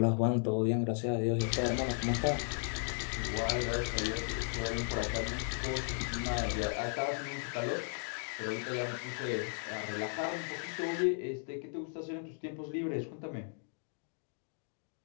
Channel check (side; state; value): right; silent; 54 dB below the other